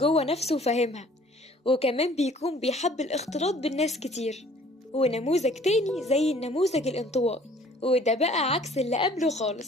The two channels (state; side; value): normal; both; correlation 0.54